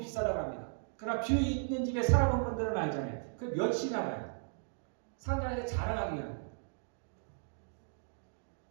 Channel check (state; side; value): silent; left; digital silence